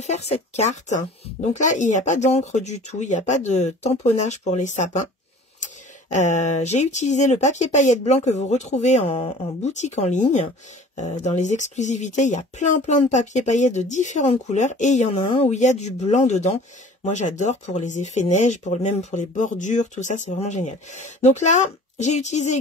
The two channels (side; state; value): both; normal; correlation 0.46